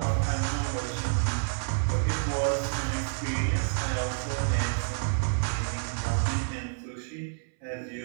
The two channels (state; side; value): silent; left; 59 dB below the other